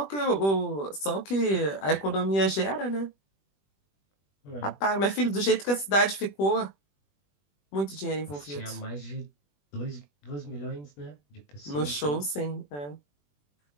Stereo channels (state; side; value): late; right; 21 ms